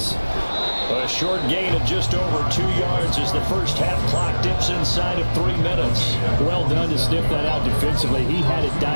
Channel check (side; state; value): both; inverted; correlation -1.00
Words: A short gain of just over 2 yards as the first half clock dips inside of 3 minutes. Well done to sniff that out defensively. He had it